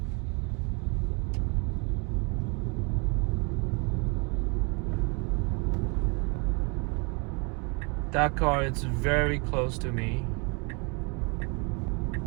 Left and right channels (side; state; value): left; quieter; 32.7 dB